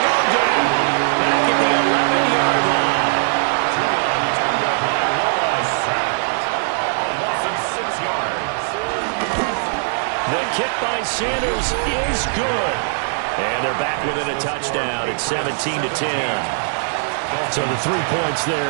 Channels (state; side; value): silent; left; digital silence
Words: go down back at the 11-yard line. A loss of 6 yards. The kick by Sanders is good. And they're back within a touchdown. It's 17 to 10. So the 3 points there,